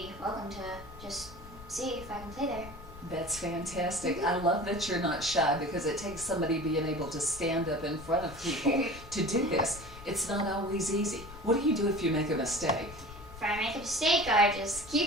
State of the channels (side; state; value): left; noise; rumble, 16 dB below the sound